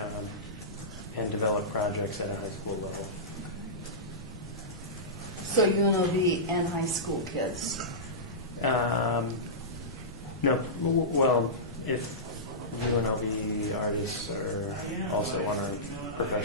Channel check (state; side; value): normal; both; correlation -0.16